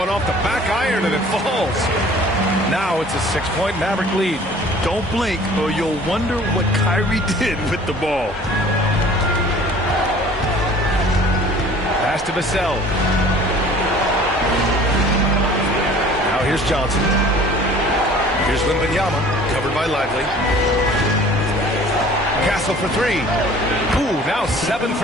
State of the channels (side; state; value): both; normal; correlation 0.49